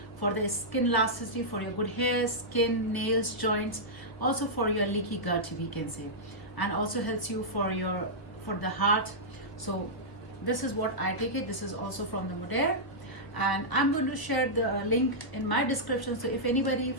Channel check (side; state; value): right; late; 1.2 ms